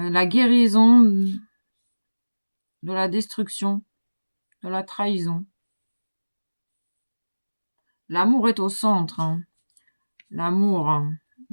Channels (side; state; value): both; inverted; correlation -1.00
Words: guérison de la destruction, de la trahison. L'amour est au centre, hein. L'amour, hein.